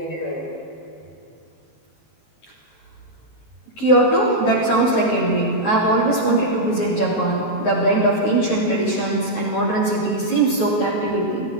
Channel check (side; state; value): right; late; 19 ms